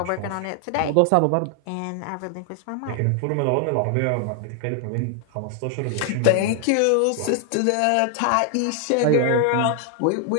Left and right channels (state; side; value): different; both; correlation 0.00